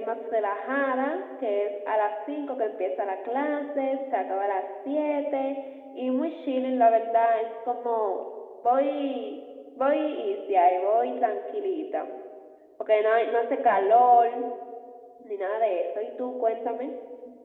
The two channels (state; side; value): identical; both; correlation 1.00